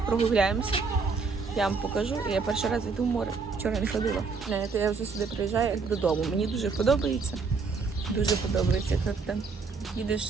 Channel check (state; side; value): quieter; left; 4.7 dB